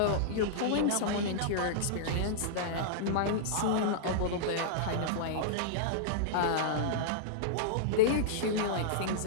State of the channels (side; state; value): both; different; correlation -0.02